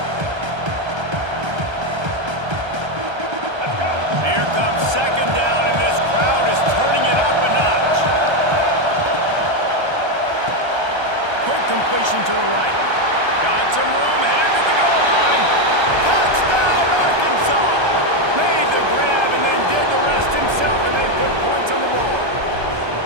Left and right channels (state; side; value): late; left; 1.3 ms